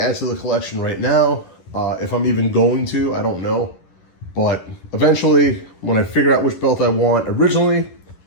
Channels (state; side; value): late; right; 11 ms